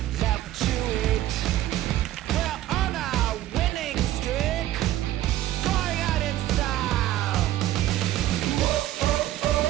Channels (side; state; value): left; quieter; 14.0 dB